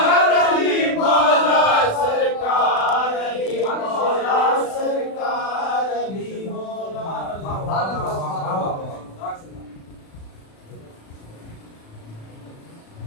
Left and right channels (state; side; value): late; right; 36 ms